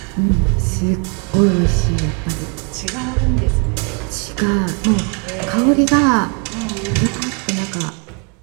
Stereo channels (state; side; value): quieter; left; 36.6 dB